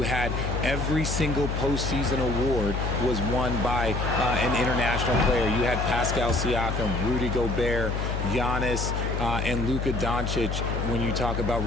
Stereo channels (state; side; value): noise; left; hum, 2 dB below the sound